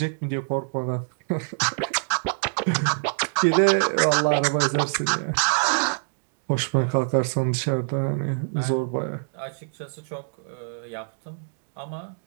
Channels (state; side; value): silent; left; digital silence